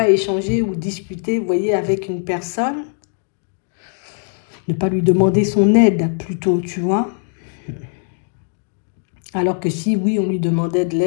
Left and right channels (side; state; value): right; silent; 66 dB below the other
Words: échanger ou discuter, vous voyez, avec une personne. Ne pas lui demander son aide, plutôt, tu vois. Alors que si, oui, on lui demandait de